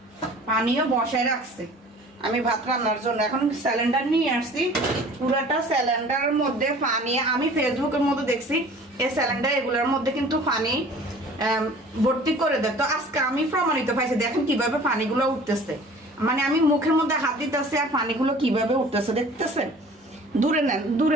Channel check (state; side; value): normal; both; correlation 0.47